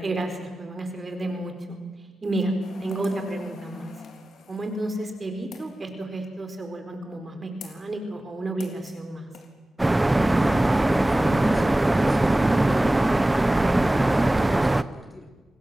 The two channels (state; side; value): normal; both; correlation 0.96